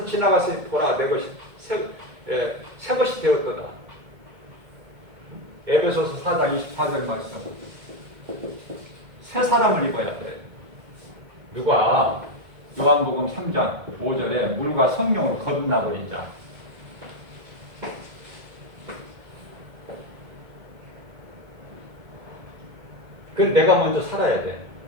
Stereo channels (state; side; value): late; left; 1.8 ms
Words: 지나가서 보라 내 것이 새 것이 되었도다. 에베소서 4장 24절 말씀, 새 사람을 입어야 돼. 누가? 요한복음 3장 5절에 물과 성령으로 거듭나버린 자. 그래서 내가 먼저 살아야 돼.